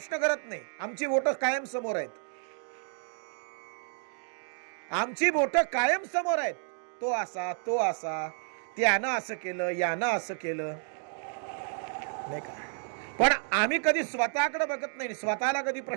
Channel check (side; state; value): left; silent; 56 dB below the other